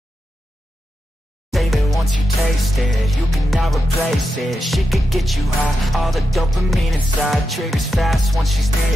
Once you taste it, you cannot replace it. She could get you high, all the dopamine inside triggers fast once she's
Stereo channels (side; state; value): both; normal; correlation 0.88